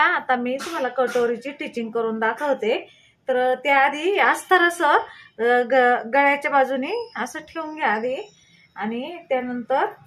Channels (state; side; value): identical; both; correlation 1.00